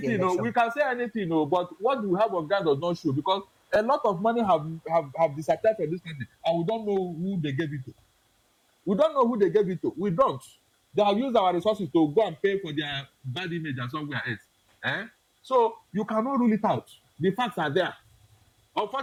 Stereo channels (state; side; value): identical; both; correlation 1.00